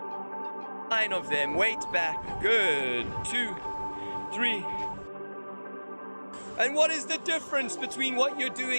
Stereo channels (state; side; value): inverted; both; correlation -1.00